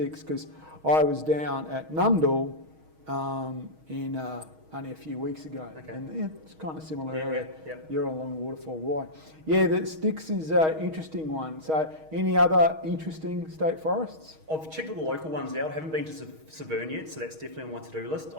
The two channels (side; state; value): left; late; 6.4 ms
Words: because I was down at Nundle only a few weeks ago, and it's kind of similar area. Yeah. You're along the waterfall. Why? Yeah, the Styx is an interesting one. So, any other interesting state forests? I've checked all the local ones out. I haven't been to Severn yet, so that's definitely on my to-do list.